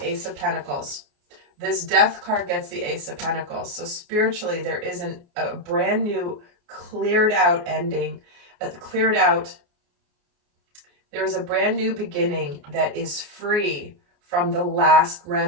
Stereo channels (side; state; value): left; late; 29 ms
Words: Ace of Pentacles. This Death card gets the Ace of Pentacles. So spiritually, there isn't a brand new, cleared out ending, there is a brand new beginning that is free from the last